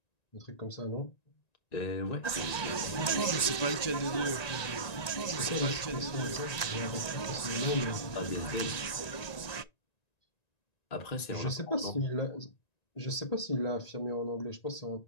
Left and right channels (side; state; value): right; late; 1.9 ms